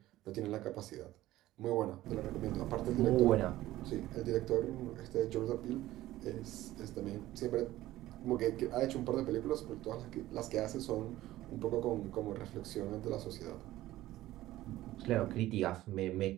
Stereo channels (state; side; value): quieter; left; 15.6 dB